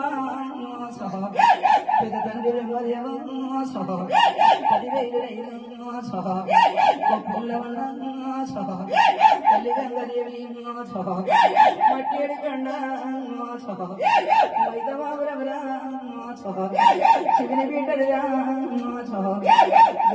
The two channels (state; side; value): identical; both; correlation 1.00